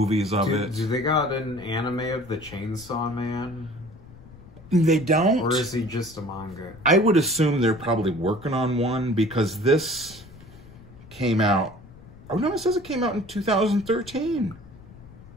of it. Do they got an anime of the Chainsaw Man? They don't. Or is he just a manga? I would assume they're probably working on one because this came out. Oh no, it says it came out in 2013.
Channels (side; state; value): left; noise; rumble, 20 dB below the sound